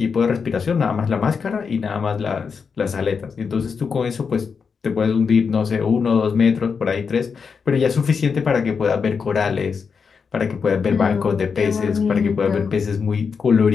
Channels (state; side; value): quieter; right; 5.7 dB